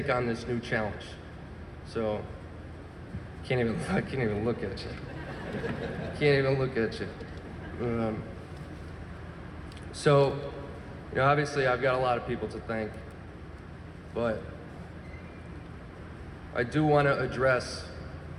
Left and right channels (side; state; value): both; identical; correlation 1.00